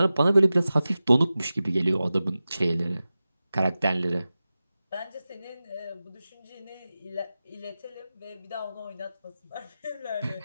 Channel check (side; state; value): both; inverted; correlation -0.94